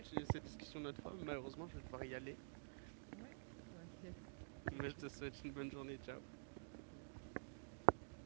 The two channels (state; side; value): silent; left; digital silence